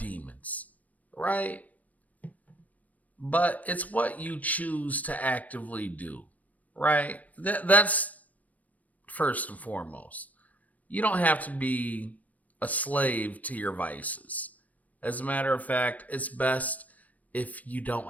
right? But it's what you choose to actively do, right? That's first and foremost. You don't have to be a slave to your vices. As a matter of fact, it's best if you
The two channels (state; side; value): late; right; 0.076 ms